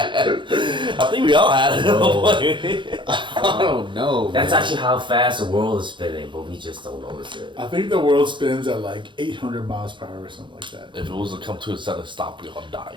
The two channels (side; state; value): left; late; 0.23 ms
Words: I think we all had it at one point. I don't know. That's man. actually how fast the world is spinning, but we just don't notice it. I think the world spins at like 800 miles per hour or something like that. If it was to come to a sudden stop, we all die.